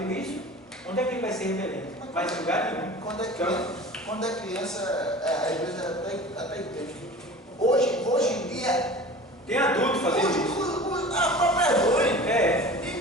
isso, onde é que ele vai ser rebelde? Vai ser lugar nenhum. Quando é criança, a igreja até entende. Hoje em dia, tem adulto fazendo isso. A própria é ruim. É.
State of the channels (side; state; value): both; normal; correlation 0.39